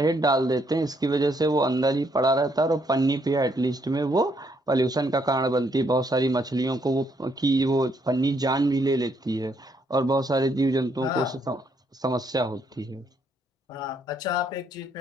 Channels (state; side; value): normal; both; correlation 0.72